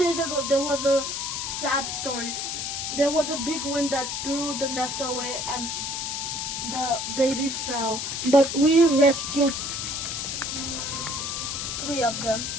ago, there was a sad story. There was a big wind that threw the nest away and the baby fell. But we rescued 3 of them.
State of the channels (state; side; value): noise; left; hiss, 3 dB below the sound